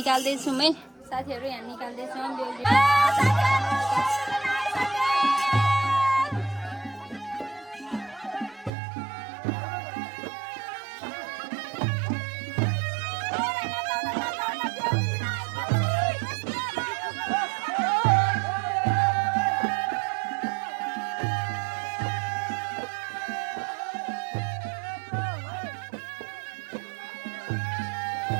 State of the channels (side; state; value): left; drops out; at 8.7 s